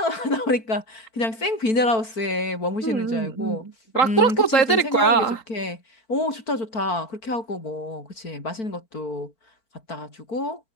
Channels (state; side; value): late; right; 4.5 ms